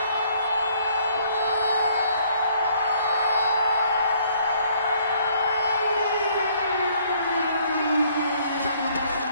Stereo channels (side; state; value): both; inverted; correlation -0.63